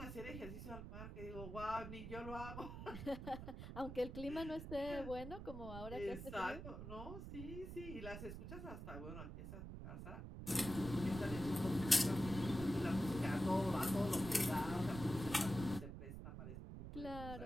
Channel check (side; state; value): right; noise; rumble, 8 dB below the sound